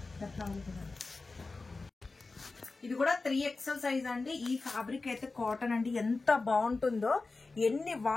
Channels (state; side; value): quieter; right; 3.7 dB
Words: ఇది కూడా 3XL సైజ్ అండి. ఈ ఫ్యాబ్రిక్ అయితే కాటన్ అండి, ఎంత బాగుంటుందో. ఎన్ని